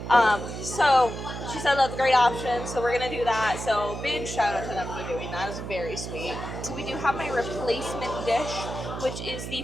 So she said that's a great option, so we're going to do that. So big shout out to them for doing that. It was very sweet. So we do have my replacement dish, which is the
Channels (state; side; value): noise; right; hum, 7 dB below the sound